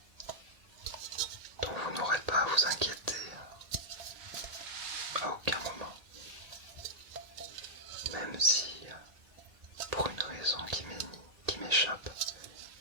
dont vous n'aurez pas à vous inquiéter à aucun moment, même si, pour une raison qui m'échappe,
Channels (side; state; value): left; late; 1.8 ms